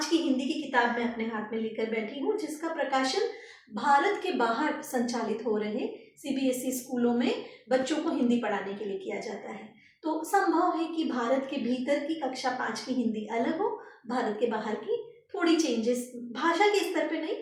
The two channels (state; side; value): identical; both; correlation 1.00